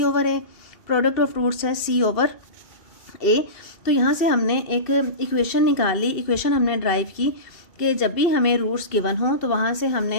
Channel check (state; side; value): late; right; 2.7 ms